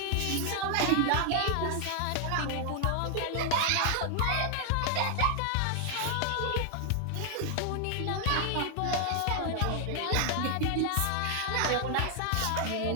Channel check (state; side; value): different; both; correlation 0.00